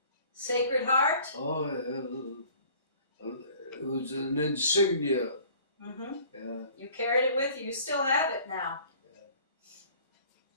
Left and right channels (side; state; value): both; inverted; correlation -0.51